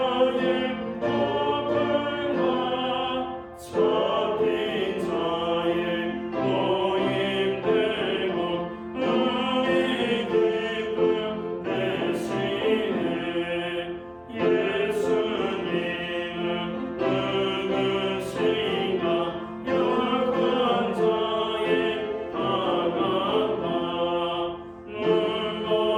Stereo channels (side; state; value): both; identical; correlation 1.00